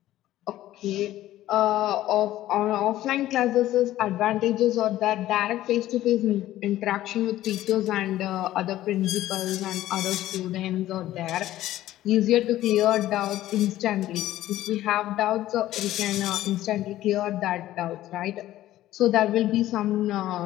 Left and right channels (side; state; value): right; quieter; 14.3 dB